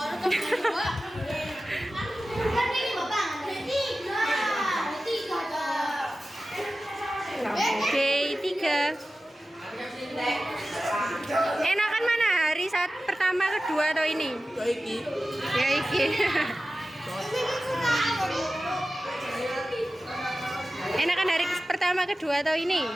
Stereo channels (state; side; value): normal; both; correlation 0.95